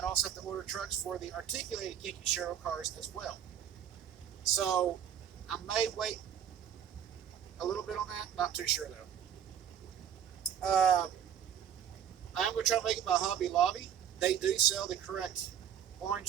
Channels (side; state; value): left; quieter; 9.2 dB